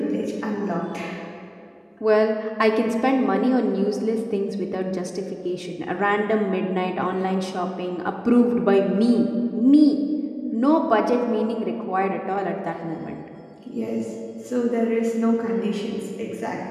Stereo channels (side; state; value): both; identical; correlation 1.00